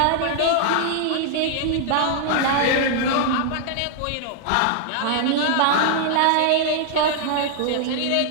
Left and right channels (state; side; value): different; both; correlation 0.00